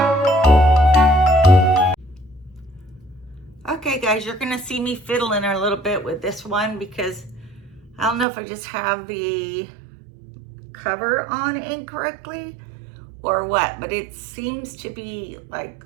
Okay guys, you're gonna see me fiddling a little bit with this one because I don't know if I just have the cover on incorrectly or what, but it seems to be like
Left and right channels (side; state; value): left; drops out; at 8.2 s